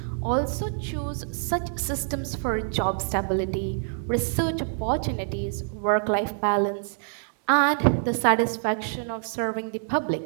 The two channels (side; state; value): left; silent; digital silence